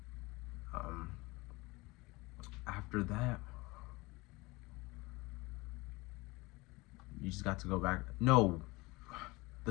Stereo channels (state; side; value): quieter; right; 23.1 dB